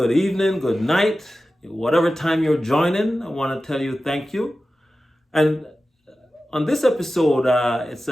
evening, good night. Whatever time you're joining, I want to tell you thank you. And on this episode, it's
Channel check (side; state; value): both; normal; correlation 0.94